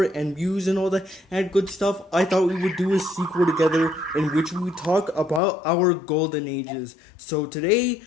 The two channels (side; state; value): right; drops out; at 5.4 s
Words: and views and all that and good stuff, I thought we would do a sequel together in which we would talk about our golden ages. So today,